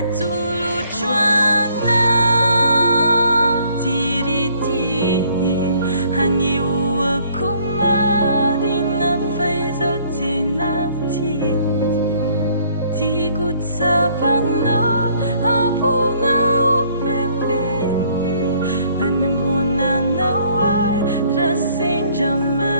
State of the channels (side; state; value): both; inverted; correlation -0.62